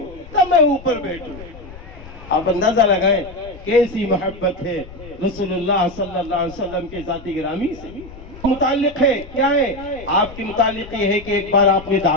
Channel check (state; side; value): noise; left; rumble, 17 dB below the sound